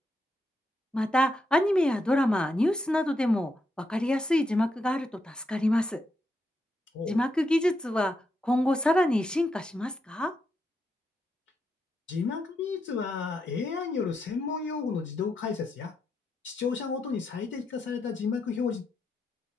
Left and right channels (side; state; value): both; normal; correlation 0.82